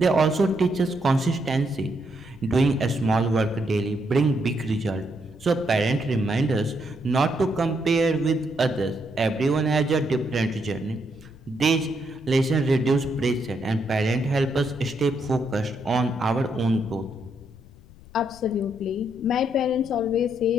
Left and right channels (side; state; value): left; noise; rumble, 21 dB below the sound